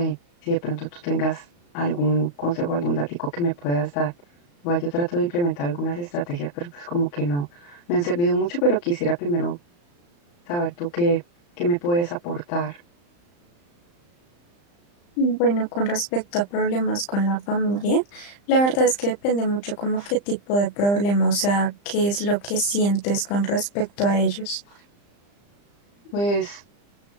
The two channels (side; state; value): right; late; 35 ms